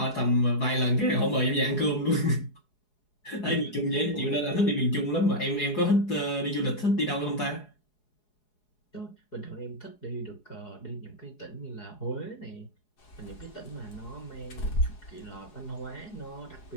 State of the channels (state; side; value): late; right; 4.8 ms